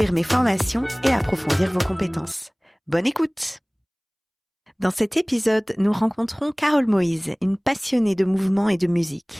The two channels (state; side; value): identical; both; correlation 1.00